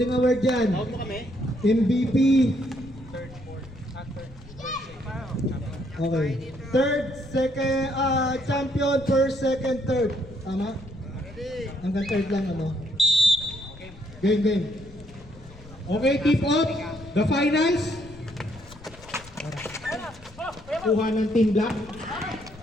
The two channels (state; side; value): noise; left; rumble, 20 dB below the sound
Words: award dyan. MVP. Okay. Third, second, champion, first, second, third. Tama? Hanggang third lang ano. Game. Okay, tip off. The finals. Kuha ng Team Black.